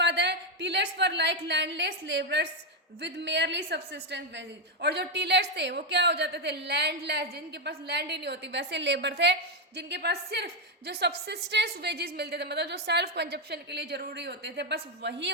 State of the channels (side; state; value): both; normal; correlation 0.05